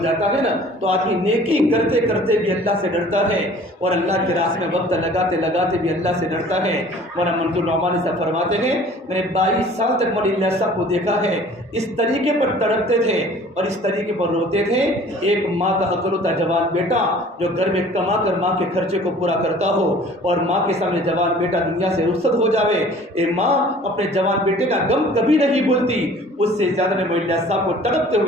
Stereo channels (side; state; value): both; normal; correlation 0.49